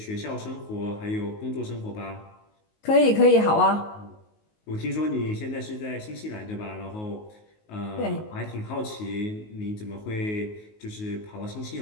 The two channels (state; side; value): late; right; 19 ms